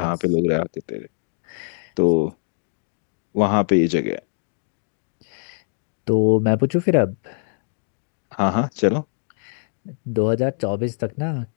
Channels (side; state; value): right; silent; digital silence